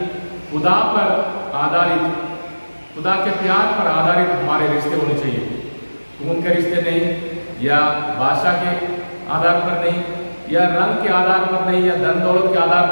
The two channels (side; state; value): both; inverted; correlation -1.00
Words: खुदा पर आधारित, खुदा के प्यार पर आधारित हमारे रिश्ते होने चाहिए। खून के रिश्ते नहीं, या भाषा के आधार पर नहीं, या रंग के आधार पर नहीं, या धन दौलत के आधार